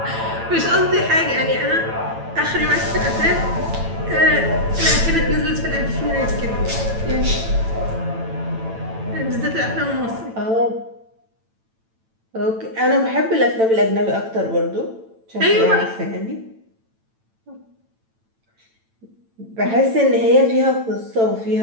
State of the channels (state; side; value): late; left; 9.0 ms